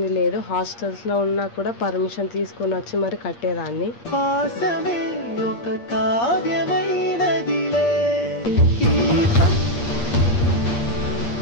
లేదు. హాస్టల్స్ లో ఉన్నా కూడా పర్మిషన్ తీసుకొని వచ్చి మరి కట్టేదాన్ని.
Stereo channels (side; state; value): right; late; 8.5 ms